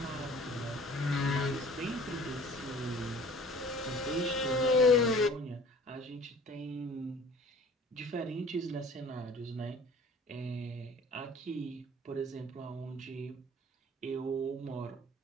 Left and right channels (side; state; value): both; normal; correlation 0.48